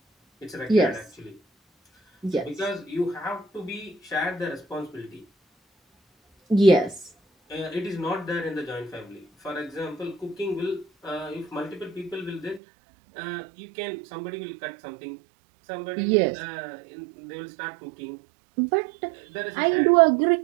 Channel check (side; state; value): left; drops out; at 12.6 s